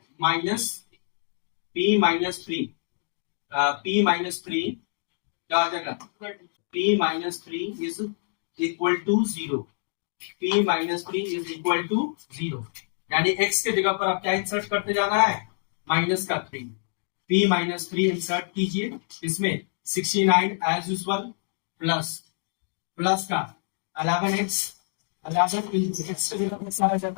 माइनस p माइनस 3 क्या हो जाएगा, p minus 3 is equal to 0, p minus 3 is equal to 0, यानी x के जगह पर आप क्या इंसर्ट करते जाना है माइनस का 3, p माइनस 3 इंसर्ट कीजिए इसमें। 69 एज यूजुअल प्लस का 11x, 11 x के जगह पर आ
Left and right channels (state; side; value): silent; right; digital silence